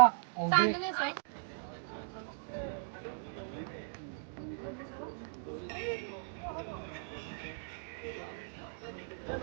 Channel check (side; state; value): left; silent; digital silence